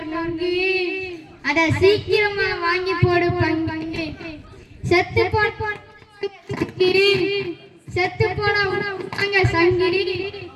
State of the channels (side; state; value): both; identical; correlation 1.00